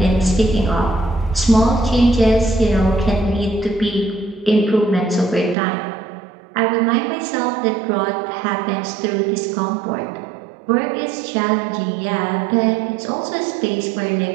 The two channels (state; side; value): drops out; left; at 5.6 s